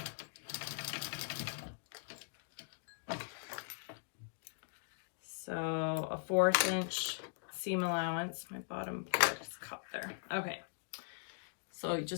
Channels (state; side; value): silent; right; digital silence